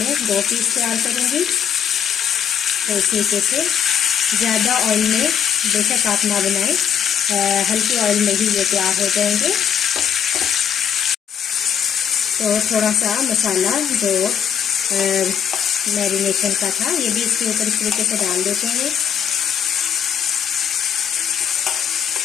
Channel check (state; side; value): quieter; right; 8.4 dB